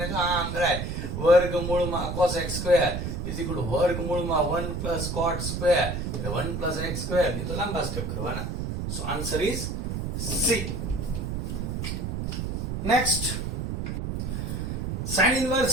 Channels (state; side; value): noise; right; rumble, 3 dB below the sound